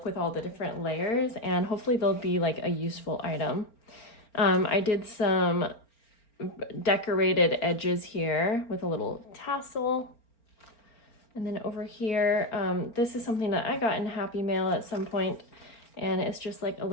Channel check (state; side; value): late; right; 4.4 ms